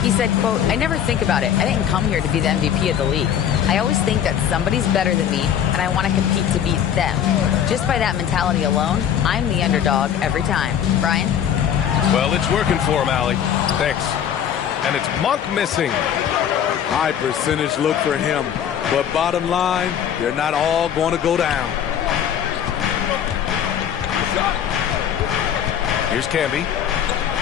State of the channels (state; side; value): quieter; right; 9.2 dB